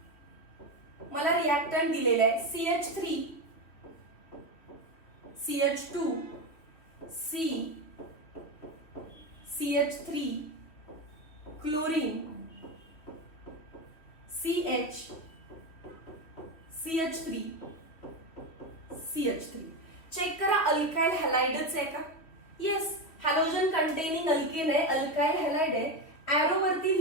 मला रिएक्टंट दिलेलं आहे CH3 CH2 C CH3 chlorine CH CH3 CH3. Check करा अल्काइल हॅलाइडच आहे का? येस, हॅलोजन कंटेनिंग अल्केन आहे, अल्काइल हॅलाइड आहे. ऍरो वरती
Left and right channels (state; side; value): late; right; 3.2 ms